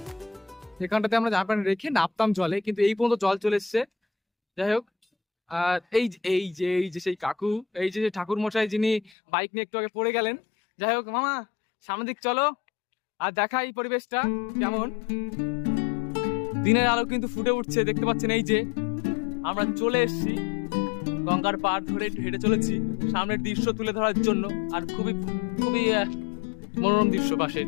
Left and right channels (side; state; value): right; drops out; at 9.1 s